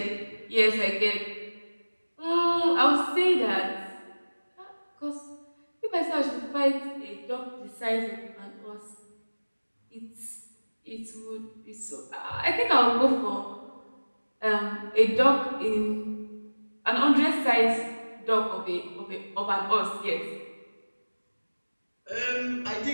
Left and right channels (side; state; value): both; inverted; correlation -1.00